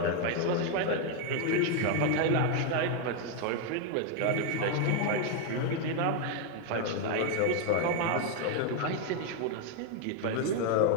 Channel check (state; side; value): different; both; correlation 0.01